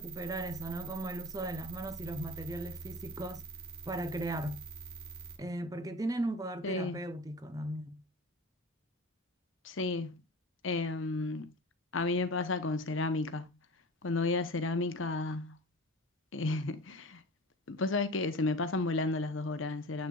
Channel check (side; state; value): both; normal; correlation 0.36